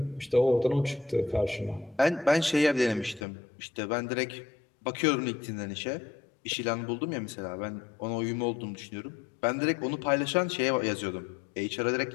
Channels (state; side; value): drops out; right; at 3.2 s